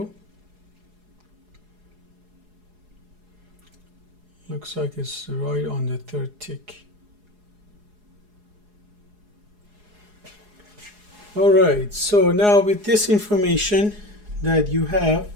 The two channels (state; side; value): late; left; 4.8 ms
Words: Looks like it's right on the 3rd tick. All right, so now with this information that you have